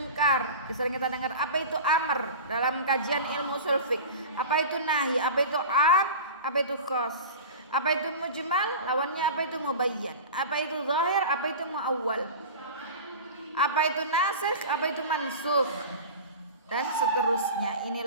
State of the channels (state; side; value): inverted; both; correlation -0.32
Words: Sering kita dengar apa itu amar dalam kajian ilmu usul fiqh. Apa itu nahi, apa itu am, apa itu khas. Apa itu mujmal, lawannya apa itu mubayyan. Apa itu zahir, apa itu muawwal. Apa itu nasikh, apa itu mansukh. Dan seterusnya.